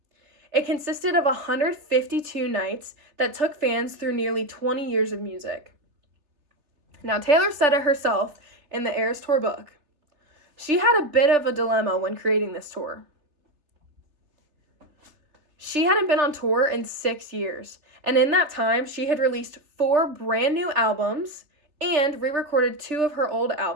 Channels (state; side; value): late; left; 3.3 ms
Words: It consisted of 152 nights that took fans through nearly 20 years of music. Now, Taylor said it herself in the Eras Tour book. She had a bit of a dilemma when creating this tour. She hadn't been on tour in 6 years, and in that time, she had released 4 brand new albums and re-recorded 2 of her old